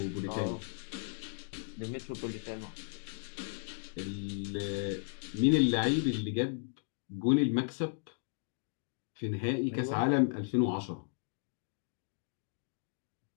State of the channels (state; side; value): silent; right; digital silence